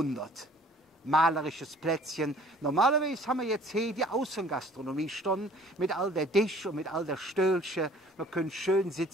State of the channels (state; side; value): normal; both; correlation 0.53